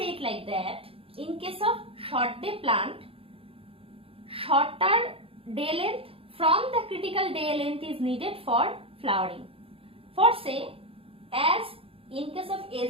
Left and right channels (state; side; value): late; left; 0.27 ms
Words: it like that. In case of short day plant, shorter day length from the critical day length is needed for flowering. For say, as in case of